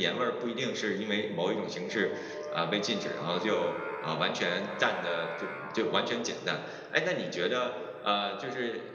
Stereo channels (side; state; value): both; identical; correlation 1.00